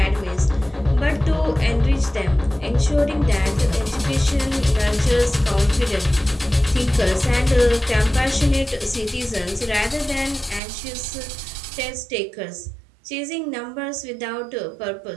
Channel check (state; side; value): drops out; left; at 10.6 s